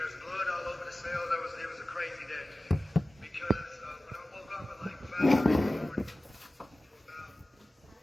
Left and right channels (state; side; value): normal; both; correlation 0.97